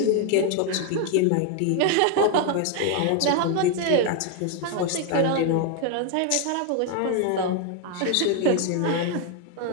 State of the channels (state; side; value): different; both; correlation 0.01